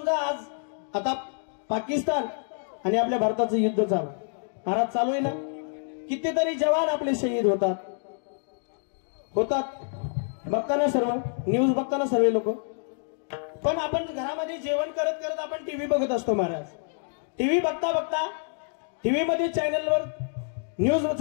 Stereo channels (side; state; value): right; silent; digital silence